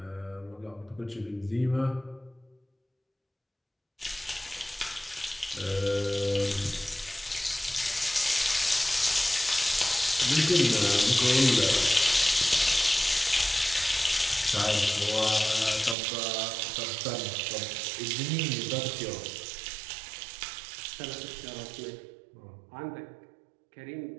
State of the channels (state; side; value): drops out; left; at 16.0 s